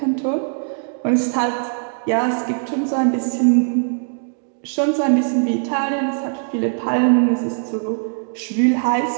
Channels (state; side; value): silent; left; digital silence